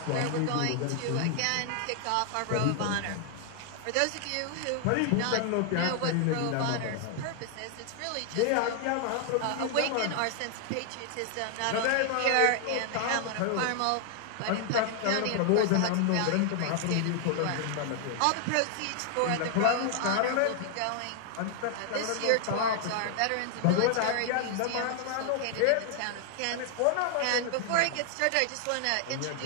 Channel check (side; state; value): both; different; correlation 0.00